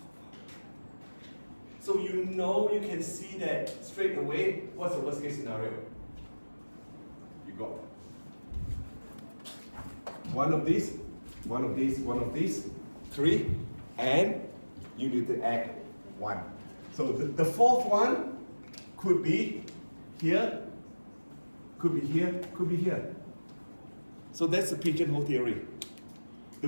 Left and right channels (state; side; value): inverted; both; correlation -1.00